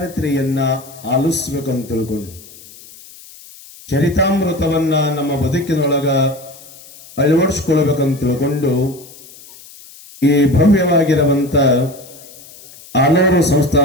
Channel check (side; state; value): left; noise; hiss, 20 dB below the sound